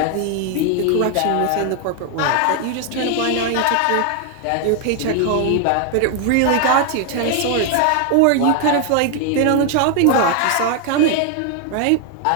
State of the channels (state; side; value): different; both; correlation 0.00